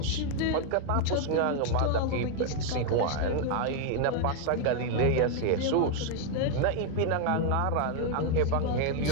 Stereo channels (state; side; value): different; both; correlation 0.01